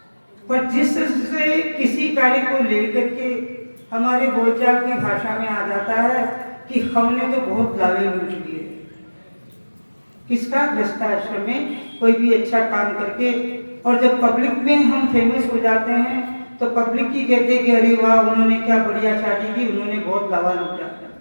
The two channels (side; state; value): both; inverted; correlation -1.00